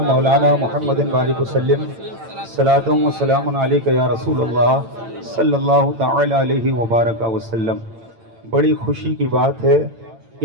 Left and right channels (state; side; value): late; left; 8.9 ms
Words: मौलाना मुहम्मदिन बारिक वसल्लिम। सलातुम व सलामुन अलैका या रसूलल्लाह सल्लल्लाहु तआला अलैहि व बारक वसल्लम। बड़ी खुशी की बात है,